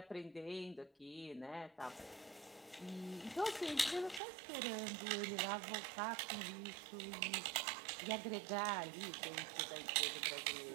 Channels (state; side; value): drops out; left; at 4.2 s